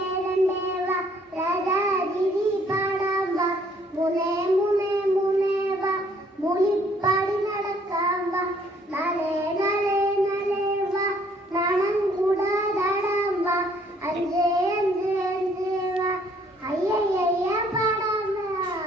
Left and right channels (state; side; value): normal; both; correlation 0.63